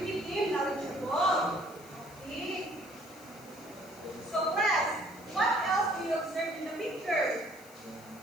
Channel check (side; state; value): left; noise; hiss, 22 dB below the sound